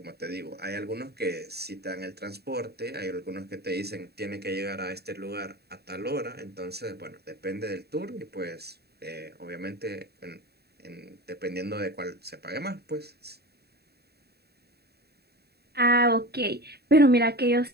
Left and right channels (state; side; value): late; left; 0.47 ms